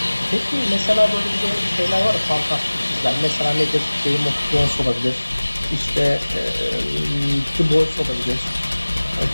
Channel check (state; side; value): inverted; both; correlation -1.00